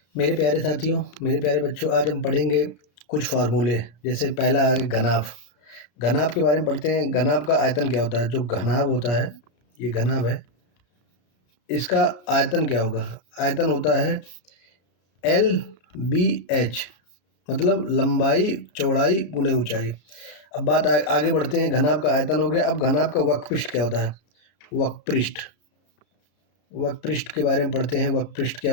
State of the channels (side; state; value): right; late; 34 ms